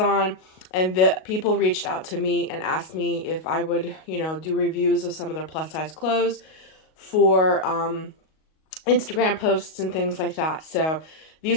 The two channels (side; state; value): right; late; 38 ms